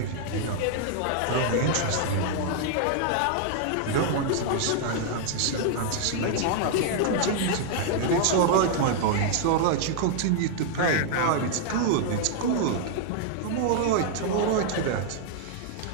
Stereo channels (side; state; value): both; different; correlation 0.00